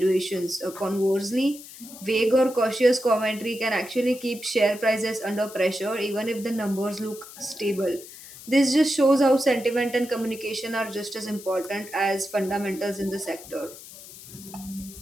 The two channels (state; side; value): noise; left; hiss, 16 dB below the sound